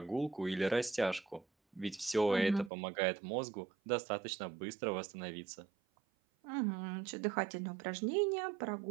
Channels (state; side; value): drops out; left; at 2.7 s